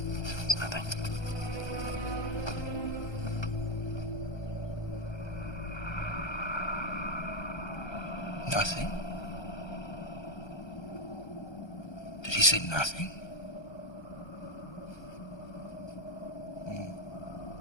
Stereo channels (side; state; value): right; late; 1.3 ms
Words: It's nothing. Nothing? Did he say nothing?